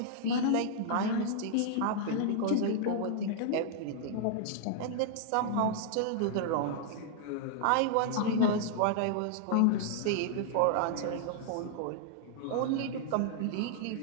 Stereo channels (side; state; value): both; different; correlation -0.01